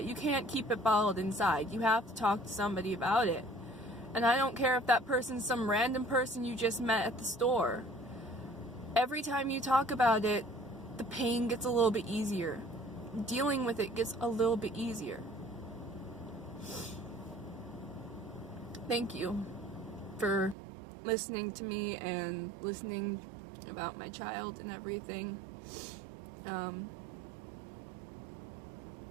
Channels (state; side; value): drops out; left; at 20.6 s